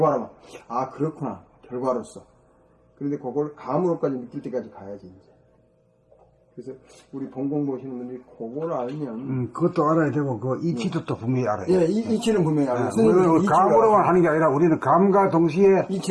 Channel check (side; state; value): both; identical; correlation 1.00